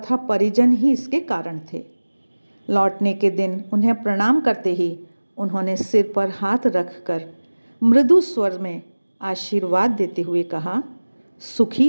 परिजन ही इसके कारण थे। लौटने के दिन उन्हें प्रणाम करते ही उन्होंने सिर पर हाथ रखकर मृदु स्वर में आशीर्वाद देते हुए कहा, सुखी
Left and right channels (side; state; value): both; inverted; correlation -1.00